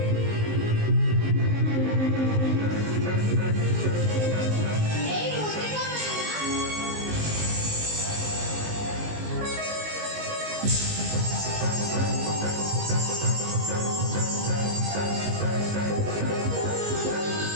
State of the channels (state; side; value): late; left; 19 ms